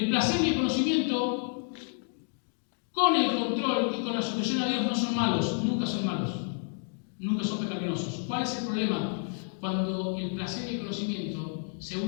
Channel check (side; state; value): right; silent; 58 dB below the other